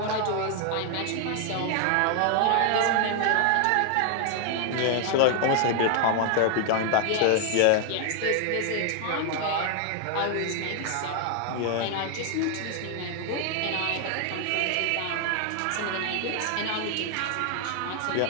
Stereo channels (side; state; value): both; different; correlation 0.00